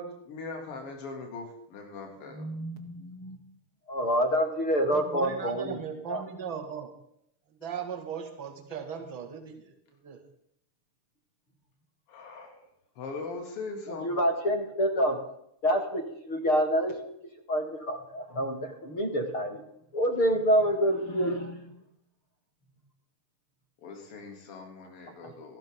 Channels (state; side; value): late; right; 6.6 ms